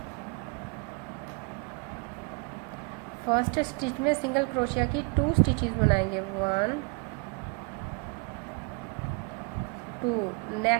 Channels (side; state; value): left; quieter; 33.0 dB